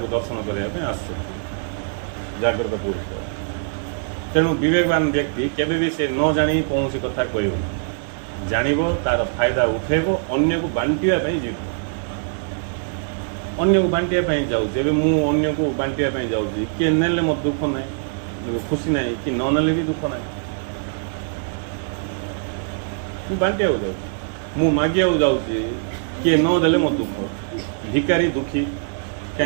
ଦର୍ଶନ କରିବା ପାଇଁ ଆସୁଛନ୍ତି ଜାଗ୍ରତ ପୁରୁଷ ତେଣୁ ବିବେକବାନ ବ୍ୟକ୍ତି କେବେ ବି ସେ ନ ଜାଣି କୌଣସି କଥା କହିବ ଜାଣିବ ତାର ଫାଇଦା ଉଠେଇବ ଅନ୍ୟକୁ ବାଣ୍ଟିବା ପାଇଁ ଯିବ ଅନ୍ୟକୁ ବାଣ୍ଟିବା ପାଇଁ ଯାଉଛି ଏବେ ମୁଁ ଅନ୍ୟକୁ ବାଣ୍ଟିବା ପାଇଁ ଯାଉଛି କିଏ ନେଲେ ମୋର ଦୁଃଖ ନାହିଁ ଖୁସି ନାହିଁ କି ନ ନେଲେ ବି ଦୁଃଖ ନାହିଁ ମୁଁ ବାଣ୍ଟିବାକୁ ଯାଉଛି ମୁଁ ମାଗିବାକୁ ଯାଉଛି କିଏ ନ ଦେଲେ ମୋ ଦୁଃଖ ଭିକାରୀ ଦୁଃଖୀ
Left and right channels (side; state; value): left; silent; digital silence